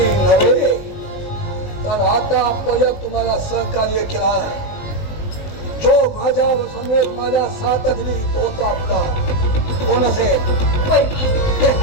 नव्हे तर आतापर्यंत तुम्हाला सहकार्य केला. जो माझ्या समेत माझ्या साथ दिली तोच आपला कोण असेल?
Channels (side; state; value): right; late; 20 ms